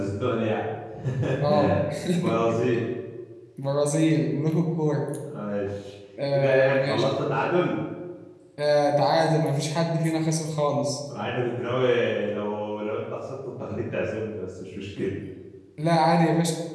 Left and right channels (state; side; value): identical; both; correlation 1.00